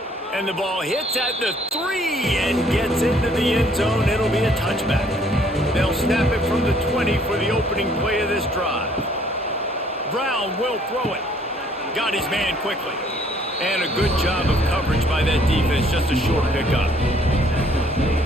And the ball hits at the 3 and gets into the end zone. It'll be a touchback. They'll snap it from the 20 for the opening play of this drive. Brown will throw it. Got his man quickly. And a good job of coverage by that defense. Just a short pickup.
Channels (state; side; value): normal; both; correlation 0.62